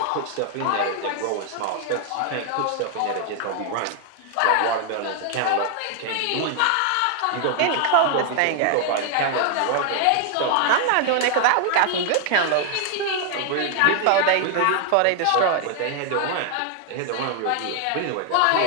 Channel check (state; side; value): different; both; correlation 0.00